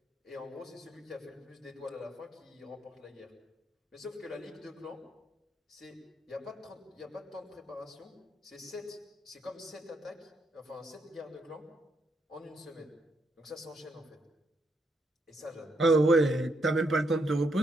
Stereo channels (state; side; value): normal; both; correlation 0.77